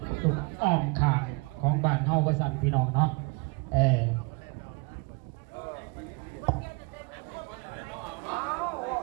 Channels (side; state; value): left; quieter; 28.9 dB